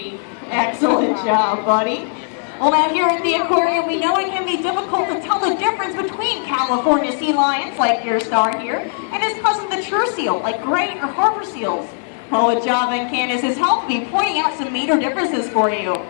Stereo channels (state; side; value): silent; right; digital silence